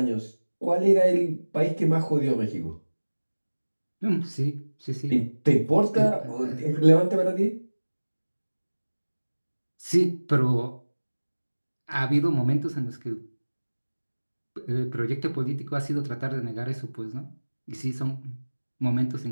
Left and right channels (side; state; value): both; inverted; correlation -1.00